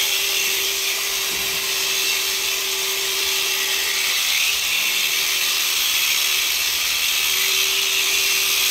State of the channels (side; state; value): both; identical; correlation 1.00